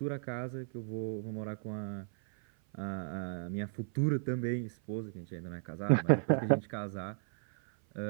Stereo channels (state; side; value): silent; left; 54 dB below the other